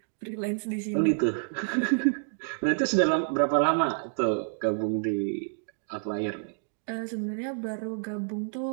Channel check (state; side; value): silent; left; digital silence